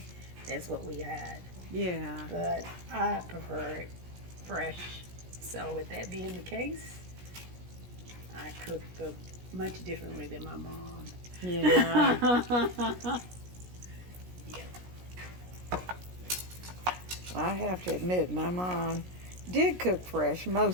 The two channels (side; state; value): left; late; 17 ms